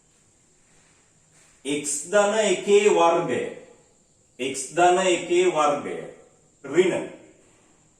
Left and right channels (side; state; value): both; identical; correlation 1.00